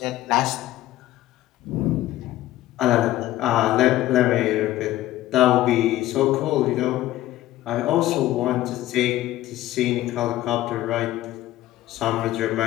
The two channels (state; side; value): quieter; right; 15.0 dB